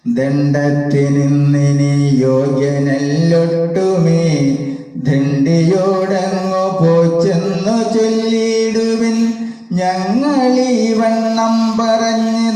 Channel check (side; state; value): both; identical; correlation 1.00